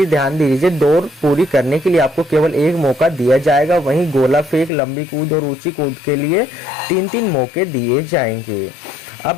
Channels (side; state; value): right; drops out; at 4.7 s